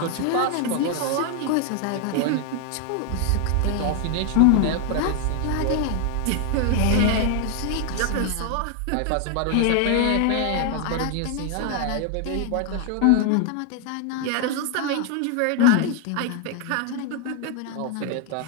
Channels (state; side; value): different; both; correlation 0.00